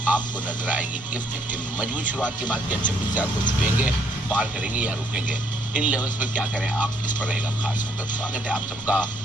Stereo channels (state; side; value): normal; both; correlation 0.69